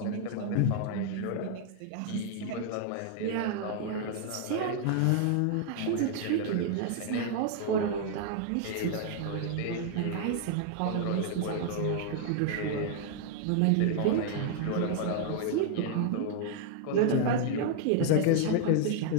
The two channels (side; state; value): both; different; correlation 0.00